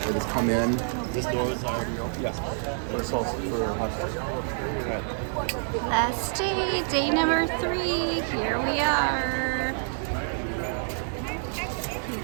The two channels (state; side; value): silent; left; digital silence